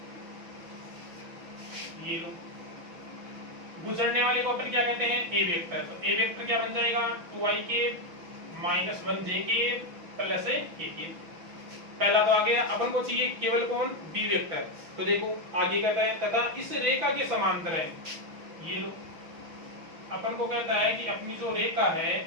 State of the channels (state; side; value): late; left; 6.1 ms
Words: ये लो, गुजरने वाले को अपन क्या कहते हैं ए वेक्टर। तो ए वेक्टर क्या बन जाएगा 2i के -1j के + k के। पहला तो आ गया, अपन को चाहिए केवल कौन बी वेक्टर। तो देखो आगे कहता है तथा इस रेखा के समांतर है। ये लो, अपन को कहता है कि अपनी जो रेखा है